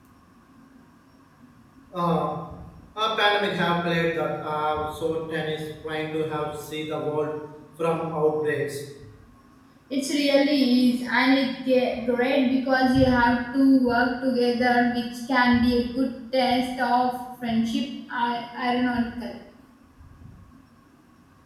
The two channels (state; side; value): identical; both; correlation 1.00